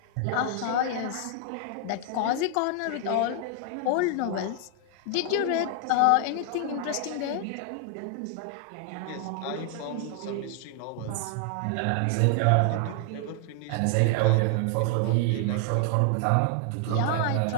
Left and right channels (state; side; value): different; both; correlation 0.00